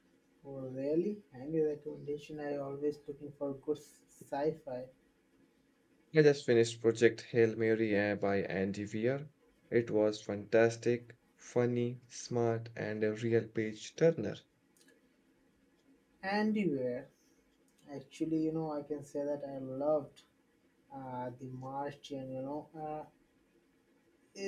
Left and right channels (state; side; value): identical; both; correlation 1.00